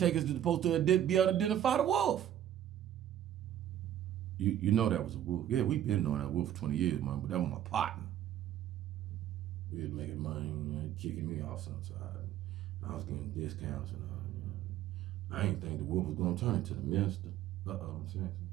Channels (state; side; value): quieter; left; 11.2 dB